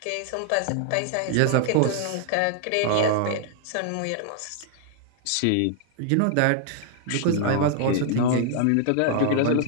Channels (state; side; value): different; both; correlation 0.00